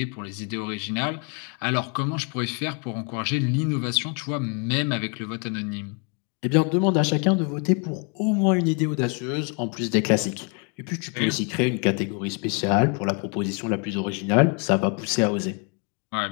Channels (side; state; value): right; quieter; 35.4 dB